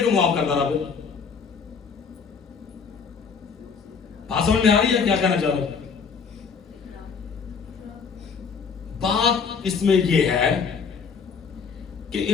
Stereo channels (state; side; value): quieter; right; 5.8 dB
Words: माफ करता रहा? फिर बात समझ में आ रही है क्या कहना चाह रहे? बात इसमें यह है कि